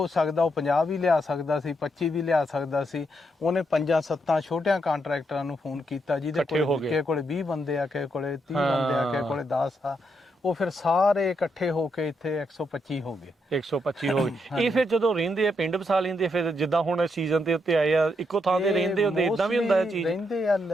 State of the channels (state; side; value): normal; both; correlation 0.79